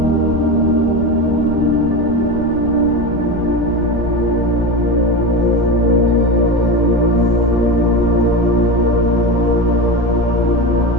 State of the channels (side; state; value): left; noise; rumble, 11 dB below the sound